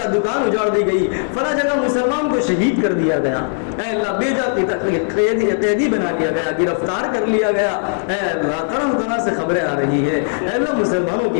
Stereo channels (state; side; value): silent; right; digital silence